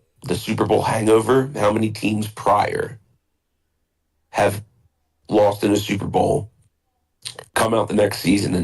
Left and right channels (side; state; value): both; identical; correlation 1.00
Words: the Super Bowl hangover. How many teams prior have lost in a Super Bowl, come out the next season,